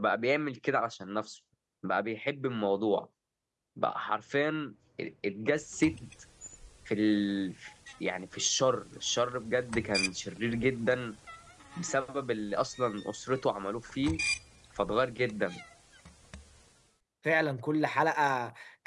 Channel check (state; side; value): identical; both; correlation 1.00